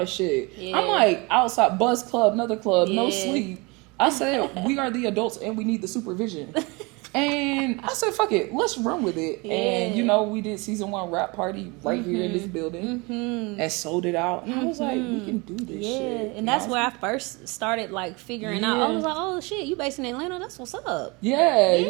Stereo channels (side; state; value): left; quieter; 27.0 dB